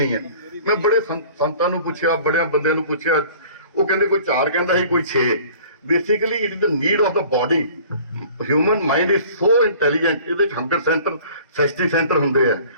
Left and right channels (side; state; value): both; inverted; correlation -0.48